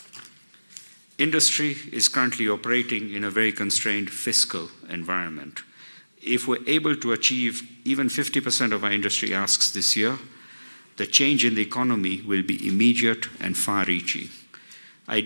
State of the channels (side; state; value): both; inverted; correlation -1.00